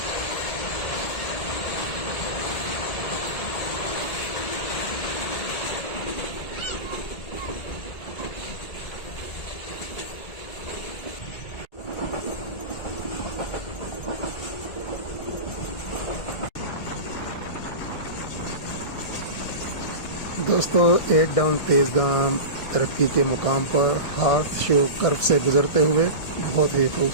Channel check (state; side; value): late; right; 1.8 ms